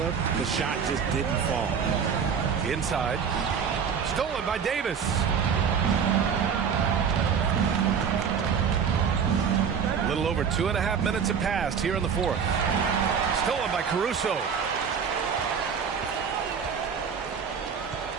The shot just didn't fall. Inside. Stolen by Davis. A little over 2.5 minutes have passed here in the fourth. Stolen by Caruso.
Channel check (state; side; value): quieter; left; 6.9 dB